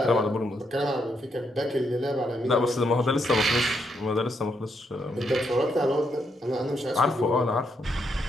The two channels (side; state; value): both; normal; correlation 0.78